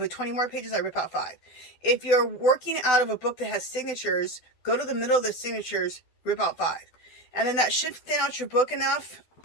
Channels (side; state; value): right; late; 12 ms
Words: 20 more pages, I rip out 5. If you're working out of a book that has signatures, go to the middle of the signatures, rip out 5. And then that should thin out your book enough